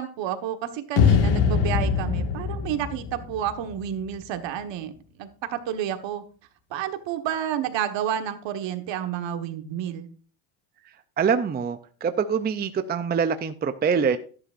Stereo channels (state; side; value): normal; both; correlation 0.17